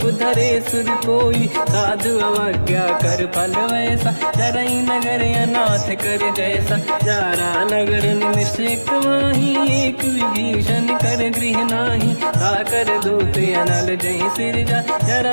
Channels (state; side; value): inverted; both; correlation -1.00